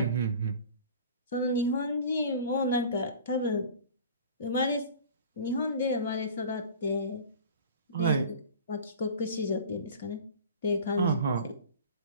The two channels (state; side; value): inverted; both; correlation -0.40